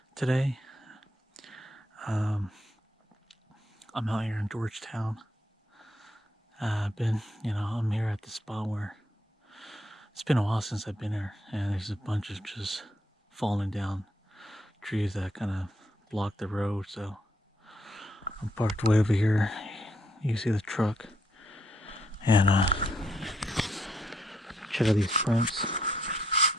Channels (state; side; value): normal; both; correlation 0.74